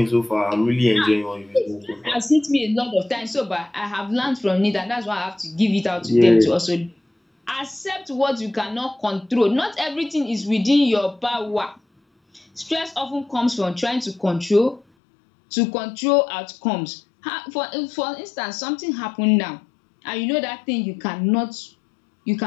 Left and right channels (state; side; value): drops out; right; at 14.8 s